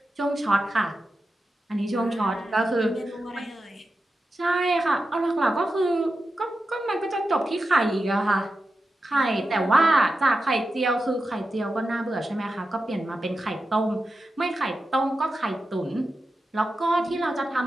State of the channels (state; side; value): normal; both; correlation 0.90